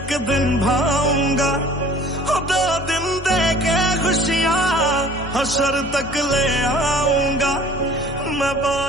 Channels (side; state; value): both; normal; correlation 0.49